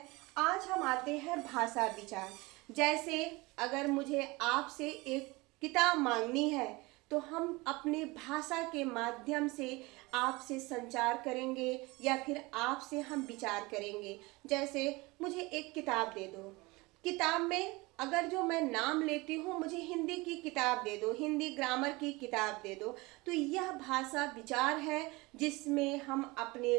आज हम आते हैं भाषा विचार। जैसे अगर मुझे आपसे एक किताब मांगनी है तो हम अपने भाषा के माध्यम से आपसे संचार करेंगे या फिर आपसे हम विचार करेंगे। जैसे मुझे एक किताब दे दो, किताब में अगर जो मैं नाम लेती हूँ, मुझे हिंदी की किताब दे दो, हिंदी ग्रामर की किताब दे दो, तो यह भाषा विचार है जिसमें हम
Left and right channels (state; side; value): quieter; left; 23.4 dB